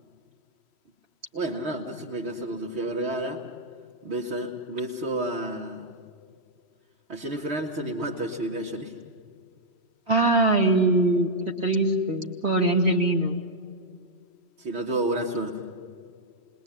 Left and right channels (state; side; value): late; left; 3.1 ms